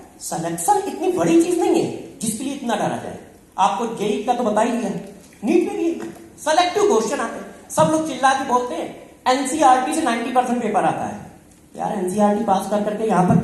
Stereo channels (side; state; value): both; identical; correlation 1.00